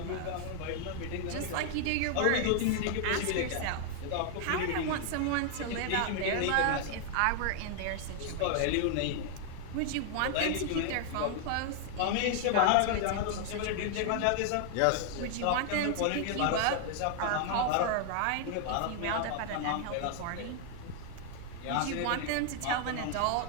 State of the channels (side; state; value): both; different; correlation 0.00